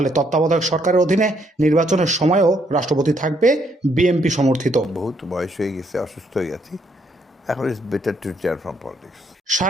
তত্ত্বাবধায়ক সরকারের অধীনে নির্বাচনের সময়ও রাষ্ট্রপতি থাকবে বিএনপি সমর্থিত। বহুত বয়স হয়ে গেছে, অসুস্থ হয়ে গেছি, এখন it's better to retire from politics.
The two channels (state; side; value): normal; both; correlation 0.71